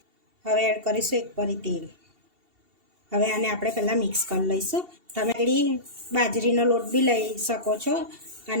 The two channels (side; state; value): left; late; 2.7 ms